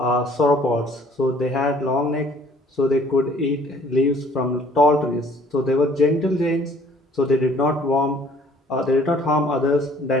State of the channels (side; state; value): both; normal; correlation 0.56